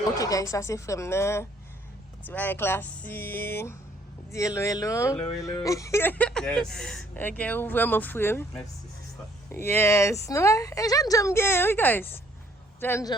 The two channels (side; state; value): both; normal; correlation 0.63